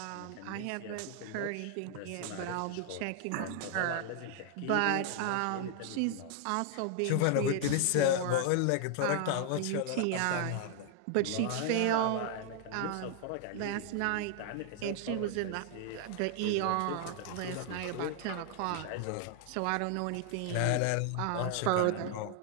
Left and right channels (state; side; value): different; both; correlation 0.00